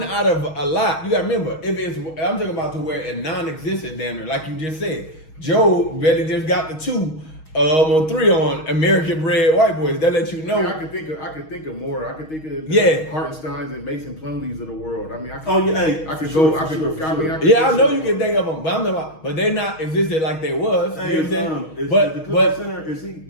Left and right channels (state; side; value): late; right; 6.3 ms